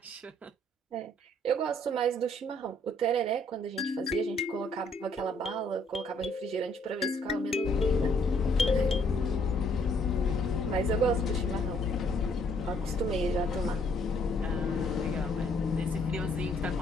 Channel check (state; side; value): normal; both; correlation 0.66